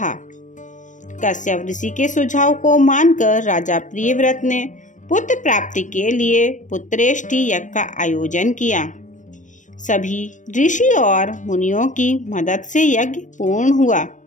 कश्यप ऋषि के सुझाव को मानकर राजा प्रियव्रत ने पुत्र प्राप्ति के लिए पुत्रेष्टि यज्ञ का आयोजन किया। सभी ऋषि और मुनियों की मदद से यज्ञ पूर्ण हुआ।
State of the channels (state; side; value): late; right; 0.37 ms